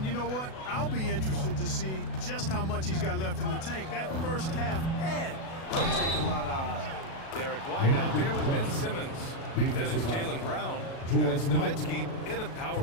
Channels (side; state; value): right; late; 37 ms